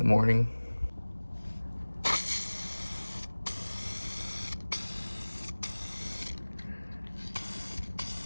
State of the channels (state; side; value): inverted; both; correlation -1.00